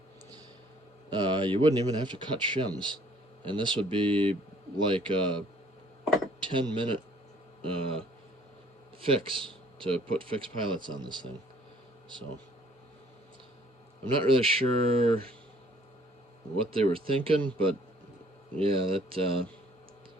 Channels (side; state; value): both; normal; correlation 0.58